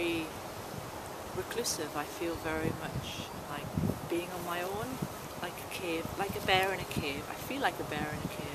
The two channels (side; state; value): both; identical; correlation 1.00